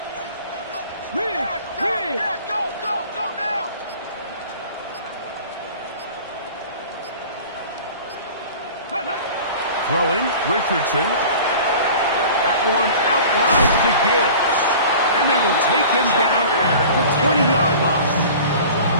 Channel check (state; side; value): inverted; both; correlation -0.41